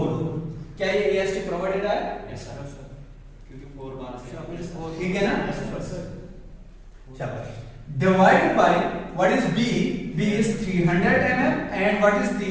क्या ये AST प्रोवाइडेड है, क्योंकि 4 बार से, ठीक है ना। शाबाश, divided by what is B is 300 mm and what is D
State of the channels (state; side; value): identical; both; correlation 1.00